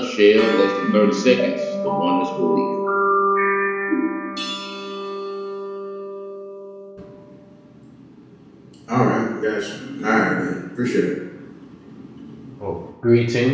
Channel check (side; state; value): both; identical; correlation 1.00